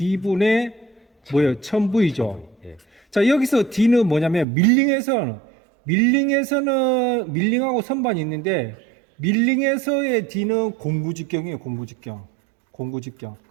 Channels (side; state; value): left; drops out; at 4.5 s